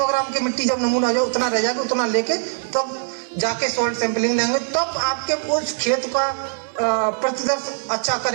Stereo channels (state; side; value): silent; left; 59 dB below the other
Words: ग्राम की मिट्टी जब नमूना आ जाए उतना रह जाएगा, उतना लेके तब जाके सॉइल सैंपलिंग लेंगे, तब आपके उस खेत का प्रतिदर्श अच्छा